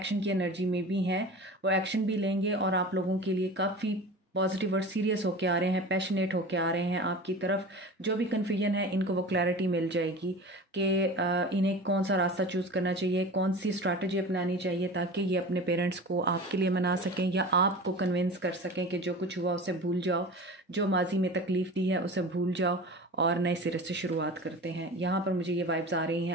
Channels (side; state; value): both; normal; correlation 0.35